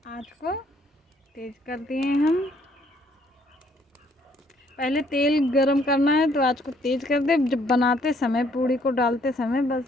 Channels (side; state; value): both; normal; correlation 0.65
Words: आँच को तेज कर दिए हम। पहले तेल गरम करना है तो आँच को तेज कर दे। जब बनाते समय, पूड़ी को डालते समय